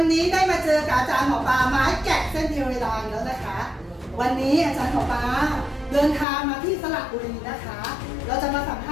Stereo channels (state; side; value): drops out; right; at 6.2 s